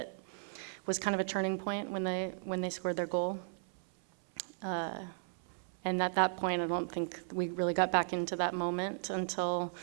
was kind of a turning point when they scored their goal. And at that point, I don't think we really got back into that moment until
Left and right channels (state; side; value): silent; left; 54 dB below the other